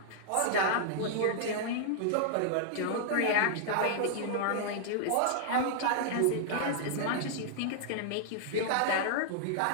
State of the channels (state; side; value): different; both; correlation -0.01